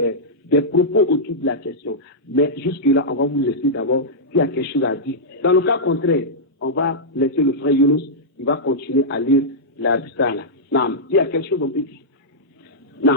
propos autour de la question. Mais jusque-là, on va vous laisser d'abord s'il y a quelque chose à dire. Dans le cas contraire, on va laisser le frère Younous, il va continuer à lire la risala. Nam, il y a quelque chose on peut dire.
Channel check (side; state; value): both; normal; correlation -0.10